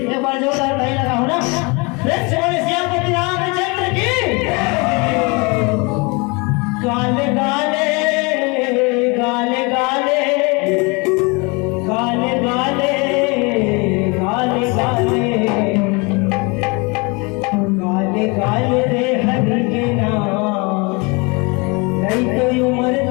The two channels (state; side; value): quieter; right; 29.0 dB